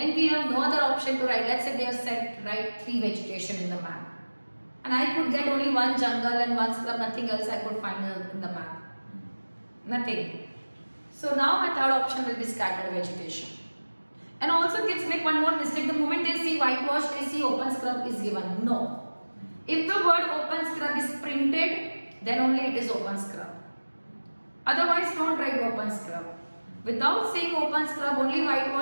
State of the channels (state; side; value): inverted; both; correlation -1.00